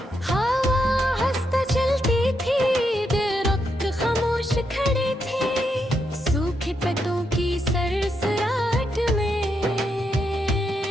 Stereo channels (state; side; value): normal; both; correlation 0.81